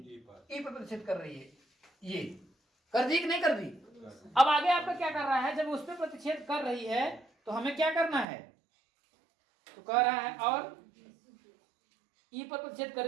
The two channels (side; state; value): left; drops out; at 8.2 s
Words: E पर प्रतिच्छेद कर रही है। ये कर दी कि नहीं कर दी। अब आगे आपका क्या कर रहा है, जब उस पर प्रतिच्छेद कर रही है तो हमें क्या करना है, तो कह रहा है और E पर प्रतिच्छेद